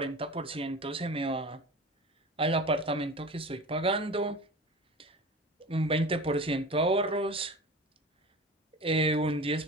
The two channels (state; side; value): normal; both; correlation 0.34